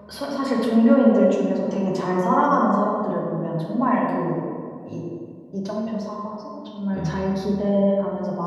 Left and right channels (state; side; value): identical; both; correlation 1.00